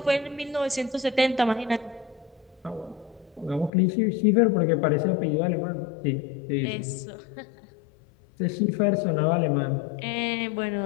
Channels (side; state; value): right; drops out; at 3.7 s